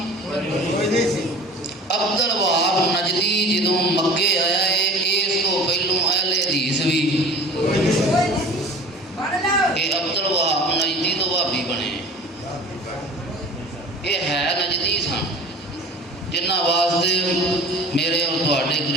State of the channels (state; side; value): normal; both; correlation 0.41